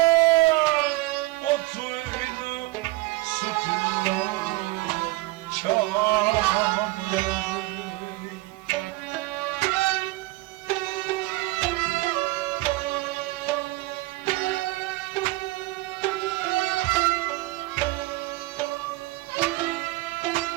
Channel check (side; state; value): left; quieter; 20.4 dB